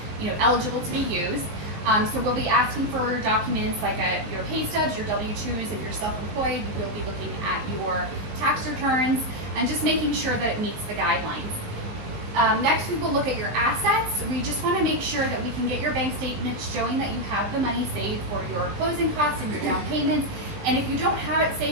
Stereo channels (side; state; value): left; late; 19 ms